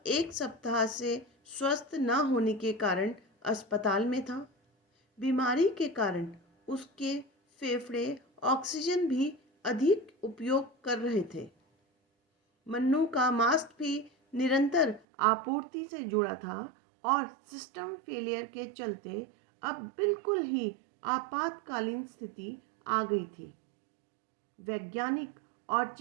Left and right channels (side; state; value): left; drops out; at 15.0 s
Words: 1 सप्ताह से स्वस्थ न होने के कारण अस्पताल में था। बीमारी के कारण उसके फेफड़े ऑक्सीजन भी अधिक उपयोग कर रहे थे। मन्नू का मास्क भी निरंतर आपूर्ति से जुड़ा था और सिस्टम फेलियर के चलते अब बिल्कुल ही आपातकालीन स्थिति आ गई थी। वैज्ञानिक और